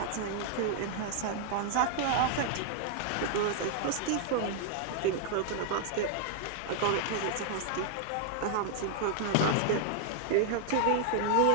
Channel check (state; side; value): different; both; correlation 0.00